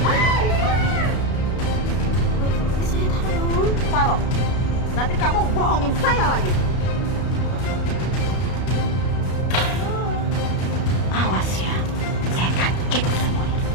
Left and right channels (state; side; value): late; right; 33 ms